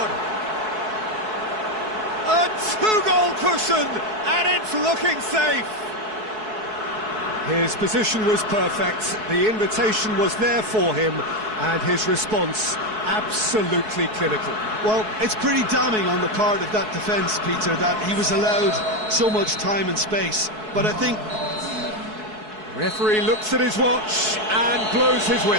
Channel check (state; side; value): late; left; 4.6 ms